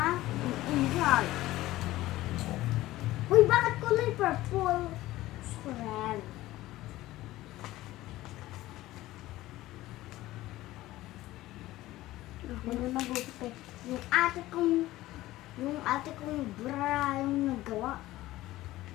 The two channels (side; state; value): right; quieter; 16.7 dB